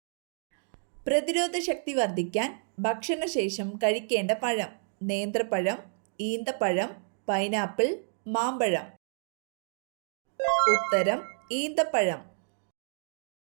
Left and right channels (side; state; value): left; silent; digital silence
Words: പ്രതിരോധ ശക്തി വർദ്ധിക്കാൻ ഭക്ഷണശേഷം കഴിക്കേണ്ട പഴം: നേന്ത്രപ്പഴം, ഈന്തപ്പഴം, പൈനാപ്പിൾ, മാമ്പഴം. ഉത്തരം ഈന്തപ്പഴം.